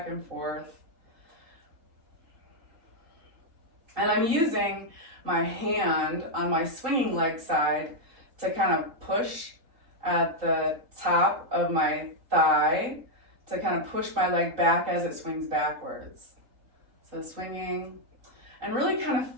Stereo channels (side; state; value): left; late; 3.8 ms